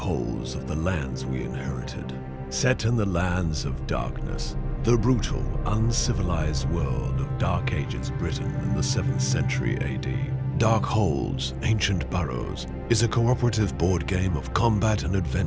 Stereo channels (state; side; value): identical; both; correlation 1.00